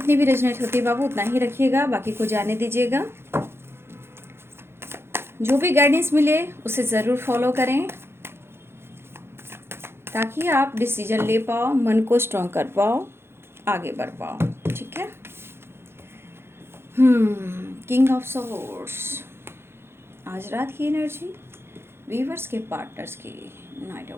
भी रेजोनेट होती है बाबू उतना ही रखिएगा, बाकी को जाने दीजिएगा। जो भी गाइडेंस मिले उसे ज़रूर फॉलो करें ताकि आप डिसीजन ले पाओ, मन को स्ट्रॉन्ग कर पाओ, आगे बढ़ पाओ। ठीक है। किंग ऑफ सोर्ड्स, आज रात की एनर्जी वीवर्स के पार्टनर्स की। Night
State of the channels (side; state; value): left; late; 0.12 ms